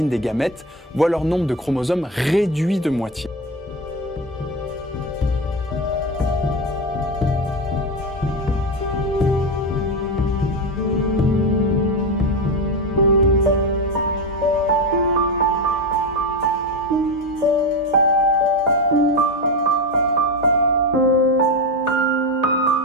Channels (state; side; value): normal; both; correlation 0.16